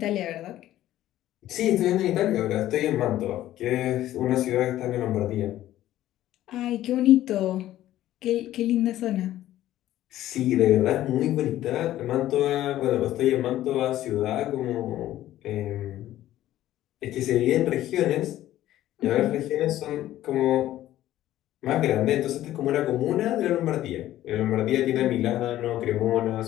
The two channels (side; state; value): right; quieter; 13.7 dB